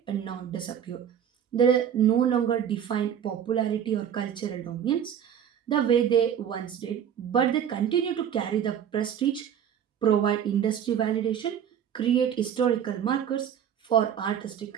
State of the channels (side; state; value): left; quieter; 9.0 dB